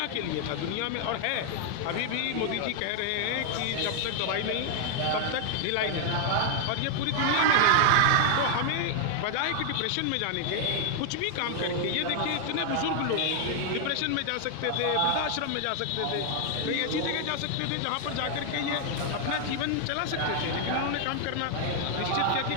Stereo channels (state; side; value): different; both; correlation 0.00